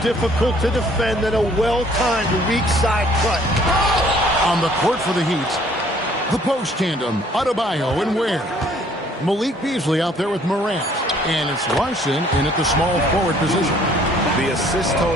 difficult to defend than a well-timed weak side cut. On the court for the Heat, the post tandem, Adebayo and Ware. Malik Beasley out there with Morant. And it's Larson in at the small forward position. The assist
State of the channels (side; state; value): both; normal; correlation 0.59